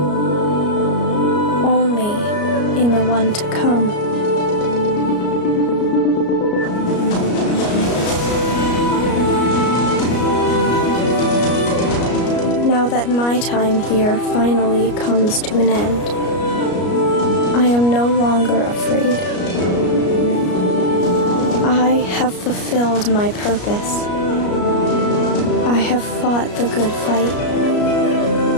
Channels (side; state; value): right; late; 33 ms